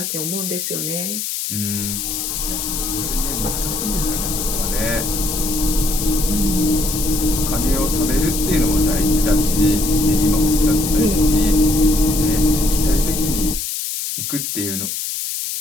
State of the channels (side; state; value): left; noise; hiss, 3 dB below the sound